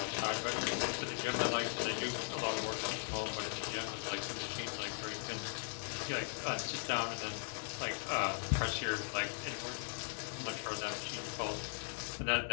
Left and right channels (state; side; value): silent; right; digital silence